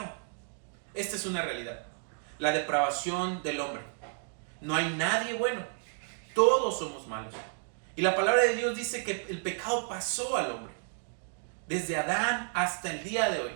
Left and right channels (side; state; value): left; silent; 57 dB below the other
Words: Esta es una realidad. La depravación del hombre. No hay nadie bueno. Todos somos malos. Y la palabra de Dios dice que el pecado pasó al hombre. Desde Adán hasta el día de hoy.